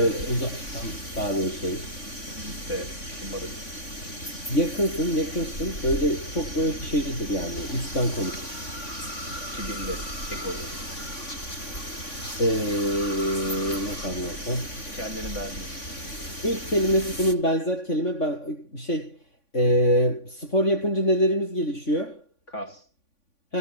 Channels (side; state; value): right; late; 3.5 ms